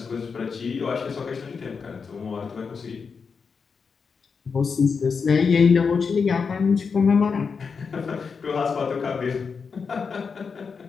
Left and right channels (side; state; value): right; quieter; 5.5 dB